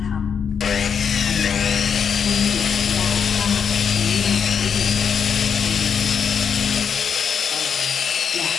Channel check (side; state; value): right; quieter; 7.0 dB